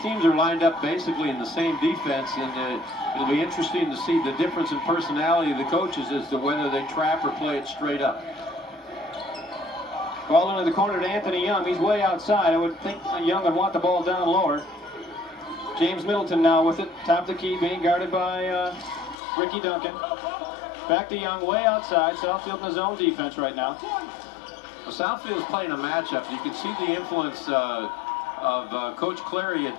teams are lined up basically in the same defense, and it'll be interesting to see the difference in personality of the coaches as to whether they trap or play it straight up. Ball into the corner to Anthony Young. He's way outside. I would think Young would want the ball down lower. James Middleton now with it. Top of the key, being guarded by Ricky Duncan. Back to Young, way outside. Southfield in his own defense right now. Well, Southfield is playing a matchup. You can see the influence of Coach Clary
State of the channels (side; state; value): right; drops out; at 19.2 s